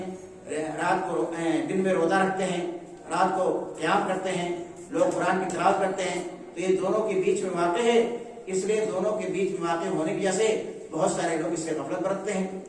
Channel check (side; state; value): both; identical; correlation 1.00